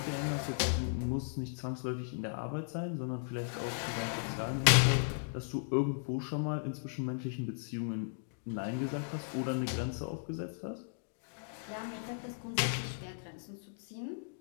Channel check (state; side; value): silent; right; digital silence